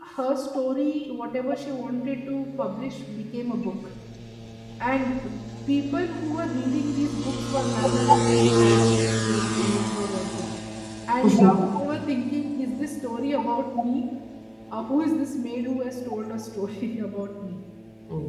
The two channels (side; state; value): both; identical; correlation 1.00